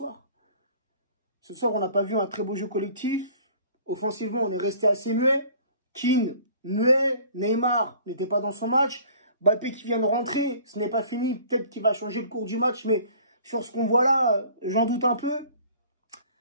Ce soir, on n'a pas vu un très beau jeu collectif. Offensivement, on est resté assez muet. Keane, muet. Neymar n'était pas dans son match. Mbappé qui vient de rentrer, ce n'est pas fini. Peut-être qu'il va changer le cours du match, mais sur ce qu'on voit là, j'en doute un peu.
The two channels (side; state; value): both; inverted; correlation -0.50